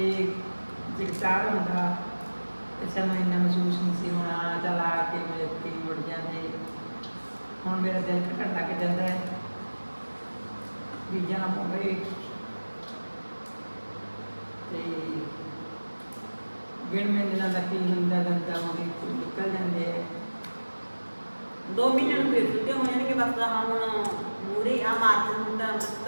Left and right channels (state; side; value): inverted; both; correlation -1.00